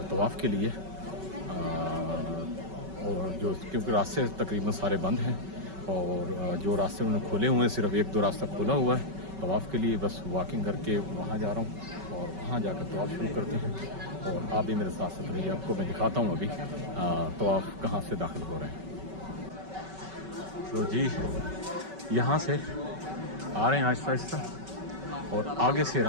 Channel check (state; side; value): late; left; 5.3 ms